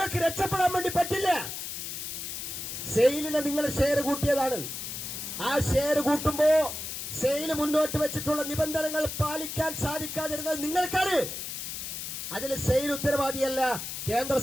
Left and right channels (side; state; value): left; noise; hiss, 6 dB below the sound